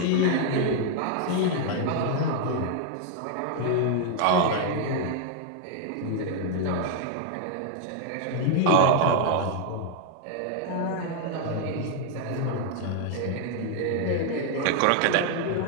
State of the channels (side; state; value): both; different; correlation 0.00